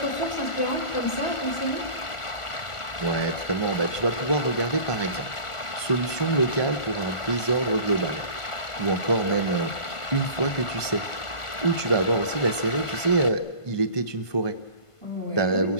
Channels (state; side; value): late; right; 1.5 ms